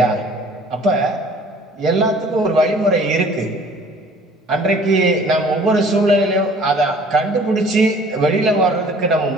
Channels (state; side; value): normal; both; correlation 0.52